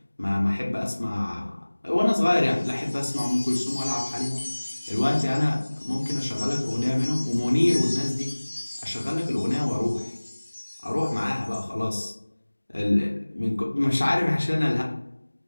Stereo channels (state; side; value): inverted; both; correlation -1.00